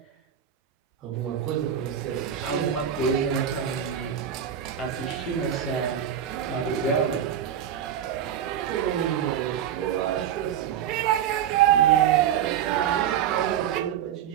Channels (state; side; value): quieter; left; 9.4 dB